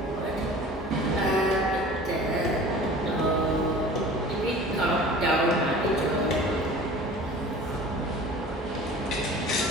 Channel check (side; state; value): both; normal; correlation 0.43